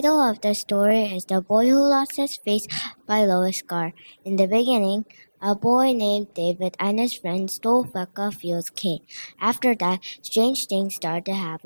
of the story is The Boy Who Lost His Face by Lois Carr. In the beginning, a boy named David and his friends stole Becca Field's cane. After that, strange things started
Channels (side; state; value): both; inverted; correlation -1.00